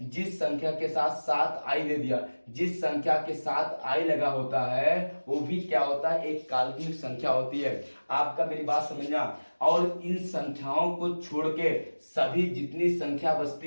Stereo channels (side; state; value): both; inverted; correlation -1.00